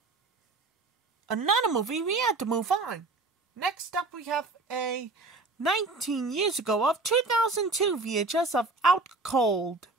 Another movie, we had to move on. Next up, we have a 19 years ago of 2002 VHS of Out Cold,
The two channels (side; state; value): left; quieter; 3.4 dB